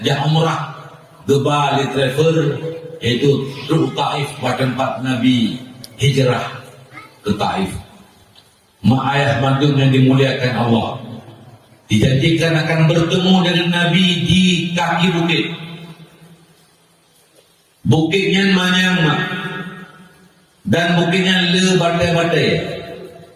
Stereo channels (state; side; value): identical; both; correlation 1.00